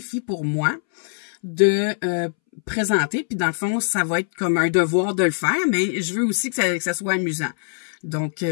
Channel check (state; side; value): silent; right; 64 dB below the other